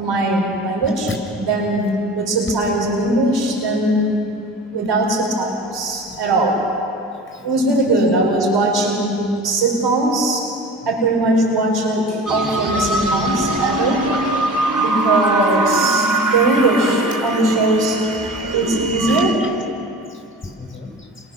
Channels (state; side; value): normal; both; correlation 0.37